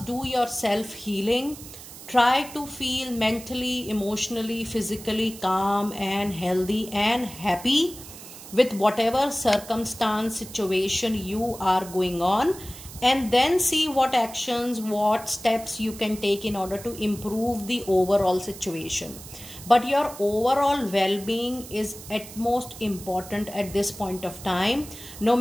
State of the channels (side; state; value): right; noise; hiss, 15 dB below the sound